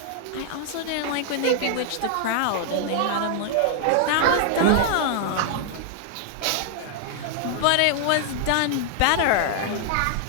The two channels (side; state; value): both; different; correlation 0.00